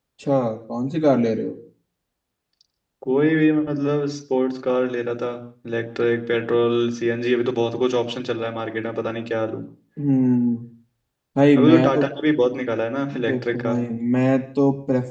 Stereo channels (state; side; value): identical; both; correlation 1.00